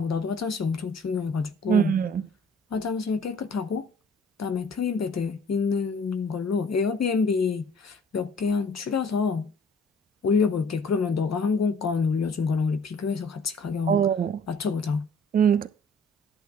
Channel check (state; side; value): normal; both; correlation 0.54